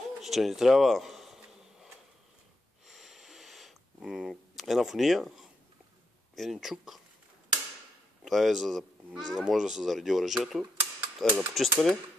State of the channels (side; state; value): both; normal; correlation 0.82